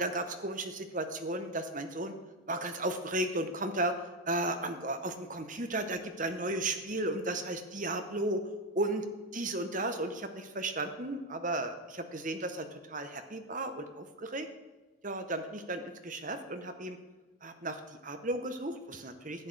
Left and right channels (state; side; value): normal; both; correlation 0.09